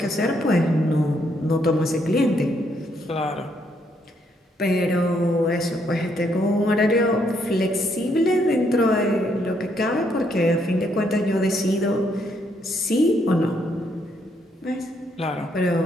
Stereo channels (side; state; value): both; normal; correlation 0.73